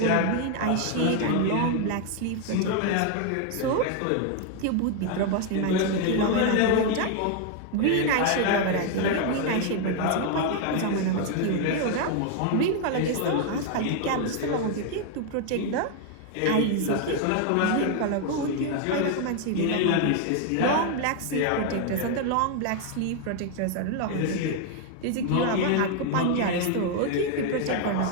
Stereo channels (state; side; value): different; both; correlation 0.00